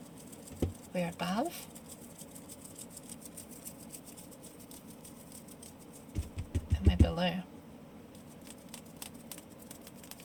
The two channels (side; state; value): both; identical; correlation 1.00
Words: We're above. And we're below.